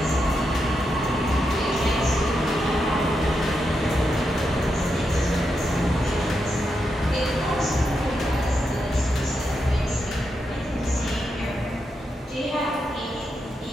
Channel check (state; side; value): normal; both; correlation 0.85